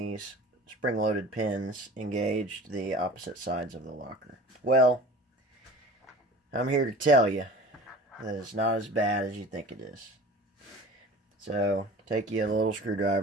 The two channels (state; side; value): normal; both; correlation 0.41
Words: spring-loaded pins engaged the opposite sides of the locker. Well, I'm here to tell you that it's not as bad as you think it is. So, take you a little